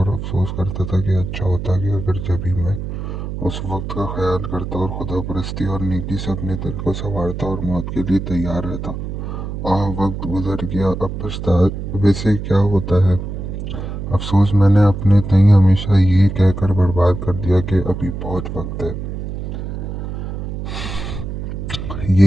افسوس کرتا تھا کہ اچھا ہوتا کہ اگر جبھی میں اس وقت کا خیال کرتا اور خدا پرستی اور نیکی سے اپنے دل کو سنوارتا اور موت کے لیے تیار رہتا۔ وقت گزر گیا، اب پچھتاوے سے کیا ہوتا ہے؟ افسوس میں نے اپنے تئیں ہمیشہ یہ کہہ کر برباد کر دیا کہ ابھی بہت وقت ہے۔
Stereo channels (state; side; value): noise; right; hum, 6 dB below the sound